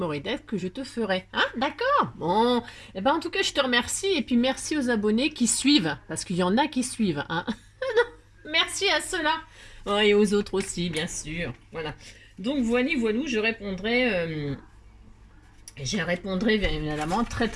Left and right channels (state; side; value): identical; both; correlation 1.00